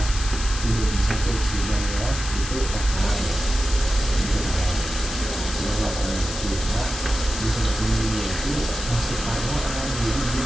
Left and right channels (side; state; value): left; noise; hiss, 7 dB below the sound